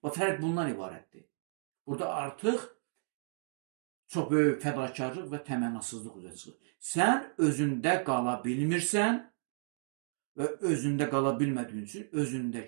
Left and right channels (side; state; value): left; silent; digital silence